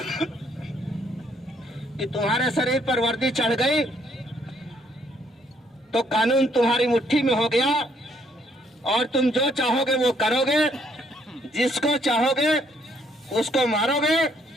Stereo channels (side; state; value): both; normal; correlation 0.68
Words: कि तुम्हारे शरीर पर वर्दी चढ़ गई तो कानून तुम्हारी मुट्ठी में हो गया और तुम जो चाहोगे वो करोगे। जिसको चाहोगे उसको मारोगे,